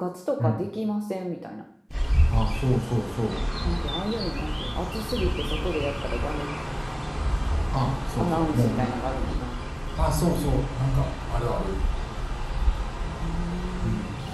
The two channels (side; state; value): both; identical; correlation 1.00